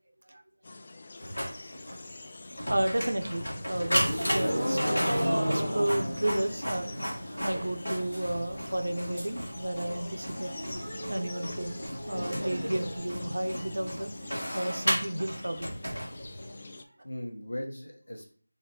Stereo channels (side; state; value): both; inverted; correlation -0.98